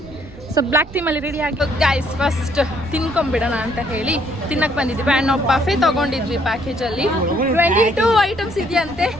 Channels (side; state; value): right; noise; rumble, 18 dB below the sound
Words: ಸೊ ಬ್ಲ್ಯಾಕ್ ಟೀಮಲ್ಲಿ ರೆಡಿ ಆಗಿ ಗೈಸ್ ಫಸ್ಟ್ ತಿನ್ಕೊಂಬಿಡೋಣ ಅಂತ ಹೇಳಿ ತಿನ್ನಕ್ಕೆ ಬಂದಿದ್ವಿ ಆ್ಯಂಡ್ ನಾವು ಬಫೆ ತೊಗೊಂಡಿದ್ವಿ ಪ್ಯಾಕೇಜಲ್ಲಿ 22 ಐಟಮ್ಸ್ ಇದೆಯಂತೆ.